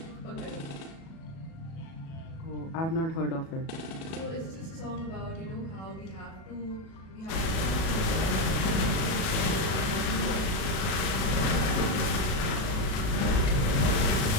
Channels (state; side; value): late; right; 37 ms